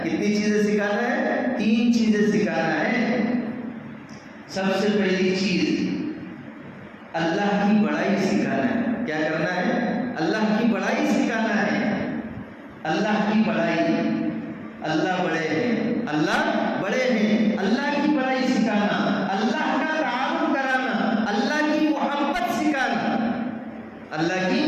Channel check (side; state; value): both; identical; correlation 1.00